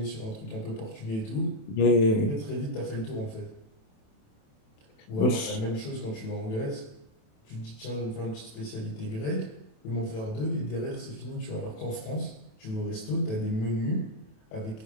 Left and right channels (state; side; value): late; right; 27 ms